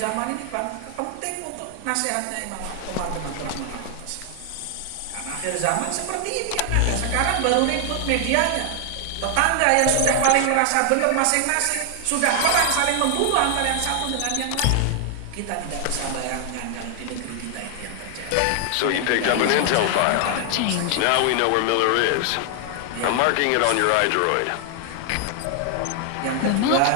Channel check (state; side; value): different; both; correlation 0.00